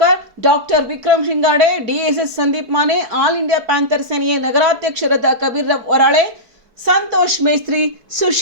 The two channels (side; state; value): left; late; 4.7 ms